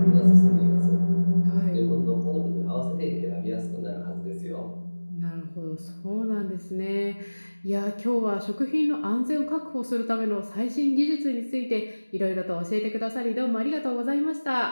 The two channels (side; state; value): both; inverted; correlation -1.00